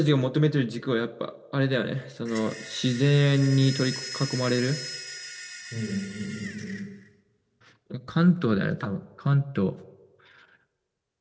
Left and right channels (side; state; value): both; identical; correlation 1.00